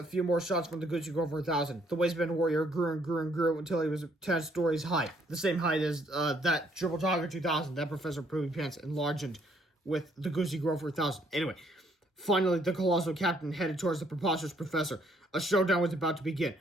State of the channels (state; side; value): normal; both; correlation 0.67